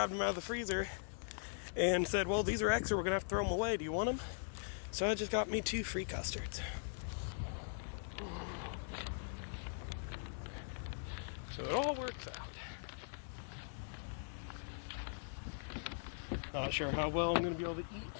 them out of the freezer and said, well, these are extra, we're gonna have to throw them away. Do you want them? So I just got me 2 free custards. So it all works out. Not sure how well I'm going to be able to eat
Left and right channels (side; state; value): right; silent; 51 dB below the other